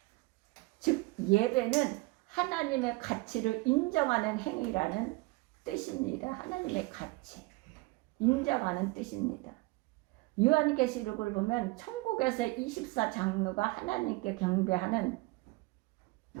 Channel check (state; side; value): quieter; left; 23.0 dB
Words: 즉 예배는 하나님의 가치를 인정하는 행위라는 뜻입니다. 하나님의 가치, 인정하는 뜻입니다. 요한계시록을 보면 천국에서 24장로가 하나님께 경배하는